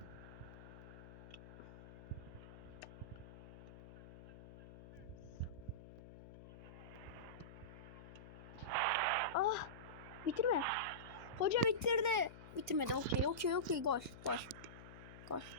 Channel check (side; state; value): left; noise; hum, 15 dB below the sound